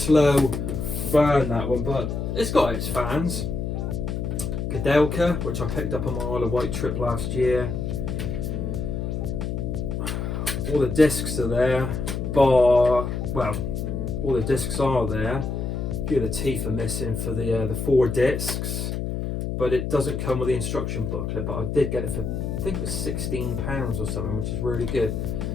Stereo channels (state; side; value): noise; left; hum, 2 dB below the sound